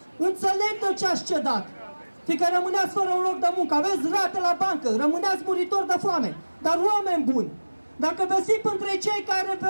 Înțeleg de ce ați cedat, fiindcă rămâneați fără un loc de muncă, aveți rate la bancă, rămâneați muritori de foame. Dar oameni buni, dacă veți fi între cei care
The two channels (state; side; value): inverted; both; correlation -1.00